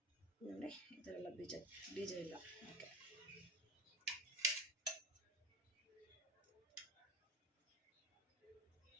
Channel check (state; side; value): normal; both; correlation 0.31